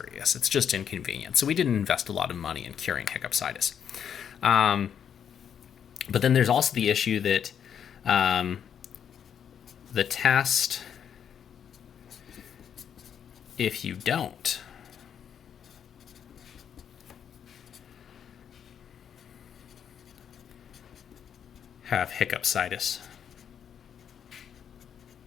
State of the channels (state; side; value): quieter; right; 8.3 dB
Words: It's just inconvenient. So we didn't invest a lot of money in curing hiccupsitis. But then there's also the issue that the test, if you don't have hiccupsitis,